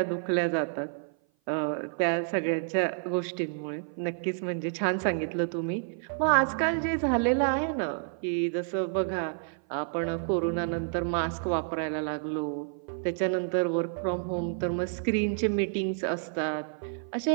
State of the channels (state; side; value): silent; left; 55 dB below the other